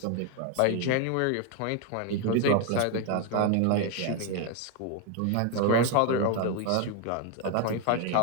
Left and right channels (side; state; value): both; different; correlation 0.01